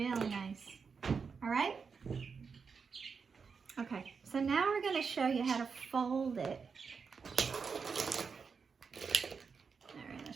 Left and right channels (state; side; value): quieter; left; 5.6 dB